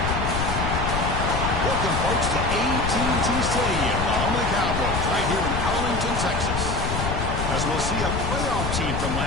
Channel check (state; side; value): noise; left; rumble, 2 dB below the sound